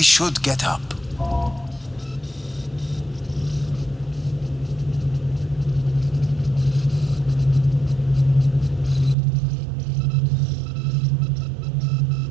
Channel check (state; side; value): drops out; left; at 9.2 s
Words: should get up.